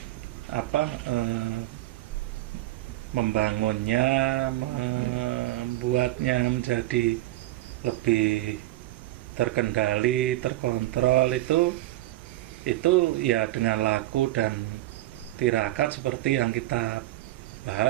membangunnya, membuatnya menjadi lebih terkendali, terkontrol, itu ya dengan laku dan tirakat seperti yang kita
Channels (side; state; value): left; quieter; 16.5 dB